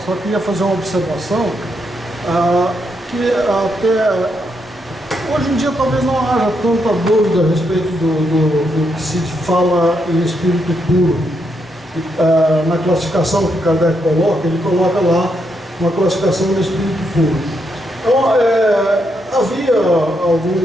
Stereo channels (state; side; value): normal; both; correlation 0.79